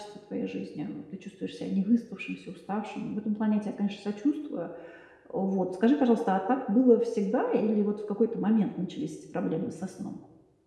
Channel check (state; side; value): identical; both; correlation 1.00